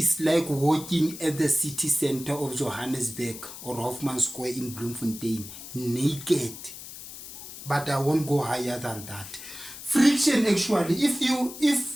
walking at the city center of Johannesburg or Hoffman Square in Bloemfontein naked. But I won't go higher than that. Friction, actually,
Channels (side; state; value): left; noise; hiss, 13 dB below the sound